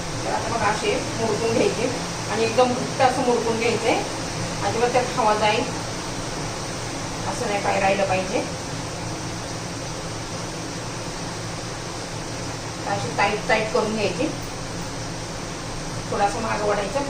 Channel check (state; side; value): identical; both; correlation 1.00